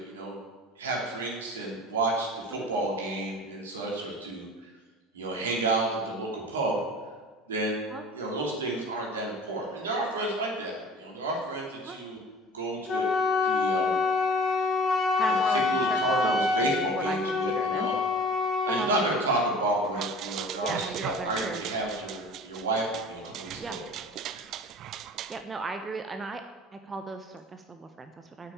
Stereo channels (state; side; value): normal; both; correlation 0.42